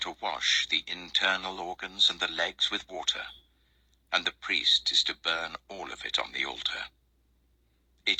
wash the internal organs and the legs with water, and the priest is to burn all of it on the altar.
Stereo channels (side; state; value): both; identical; correlation 1.00